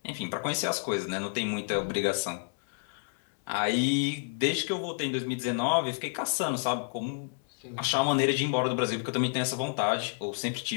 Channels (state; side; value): silent; right; 58 dB below the other